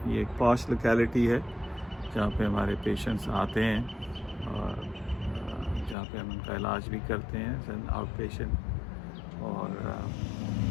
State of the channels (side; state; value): right; drops out; at 6.0 s